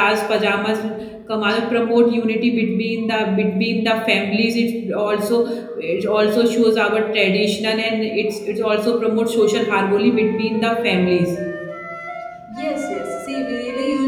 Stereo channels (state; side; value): identical; both; correlation 1.00